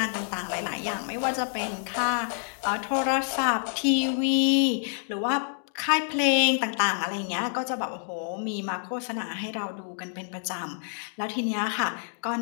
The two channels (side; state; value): right; silent; digital silence